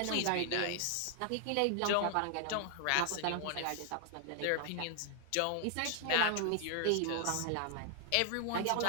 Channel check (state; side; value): different; both; correlation 0.00